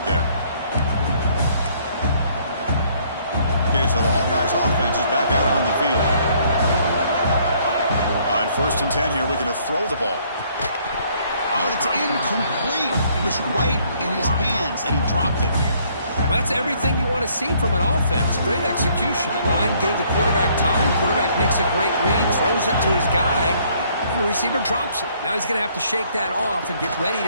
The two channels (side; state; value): both; inverted; correlation -0.64